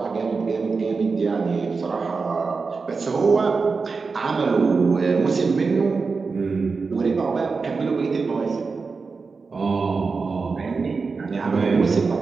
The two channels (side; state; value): left; quieter; 4.6 dB